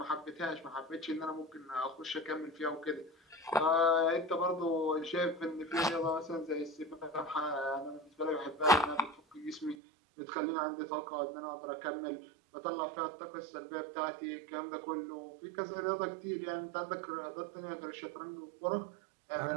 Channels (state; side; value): drops out; left; at 9.8 s